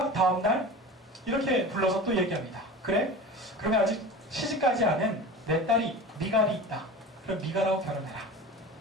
다음날 이렇게 불러서 또 얘기합니다. 그래? 그러면 아직 시집가지 않은 내 딸이 미갈이 있다. 그럼 미갈하고 결혼해라.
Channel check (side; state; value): both; normal; correlation 0.33